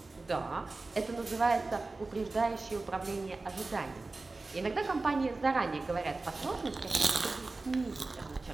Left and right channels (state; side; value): quieter; left; 3.4 dB